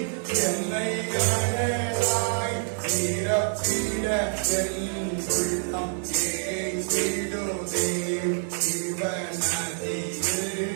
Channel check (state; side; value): silent; left; digital silence